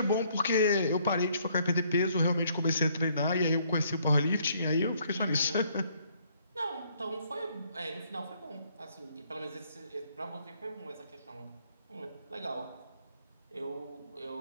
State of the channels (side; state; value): both; inverted; correlation -0.66